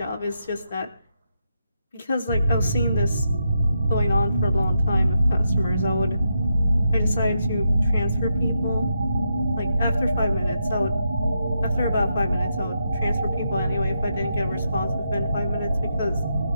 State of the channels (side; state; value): both; inverted; correlation -0.82